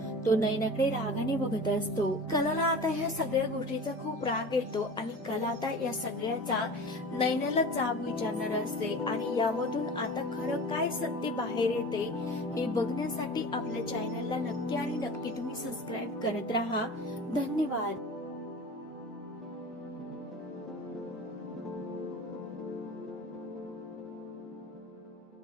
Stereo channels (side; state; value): both; normal; correlation 0.36